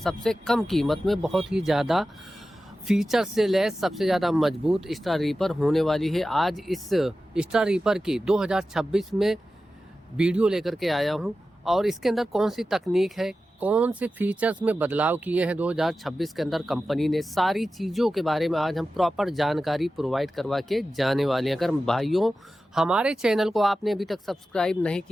कम कीमत में बहुत ही ज़्यादा फीचर से लैस सबसे ज़्यादा मजबूत स्टार रीपर होने वाली है। आज इस स्टार रीपर की 2026 में वीडियो लेकर के आया हूँ और इसके अंदर कौन सी तकनीक है, कौन से फीचर्स में बदलाव किए हैं 2026 के अंदर कंपनी ने, सारी चीज़ों के बारे में आज हम प्रॉपर जानकारी प्रोवाइड करवा के जाने वाले हैं। अगर भाइयों हमारे चैनल को आपने अभी तक सब्सक्राइब नहीं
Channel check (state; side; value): normal; both; correlation 0.93